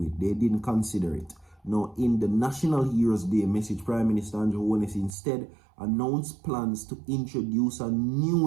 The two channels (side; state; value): left; drops out; at 5.2 s